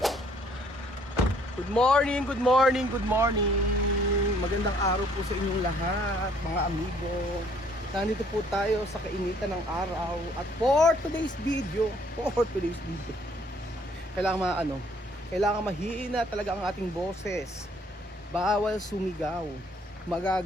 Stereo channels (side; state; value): both; normal; correlation 0.62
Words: Good morning, good morning, good morning. Magandang araw po sa inyong lahat, mga amigo. Nandito po tayo sa kainitan ng araw at for today's video, kailangan mahina talaga ang ating boses. Bawal sumigaw.